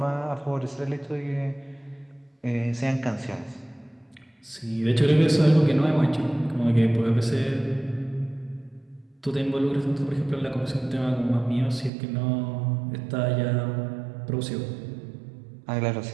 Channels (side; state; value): left; drops out; at 11.9 s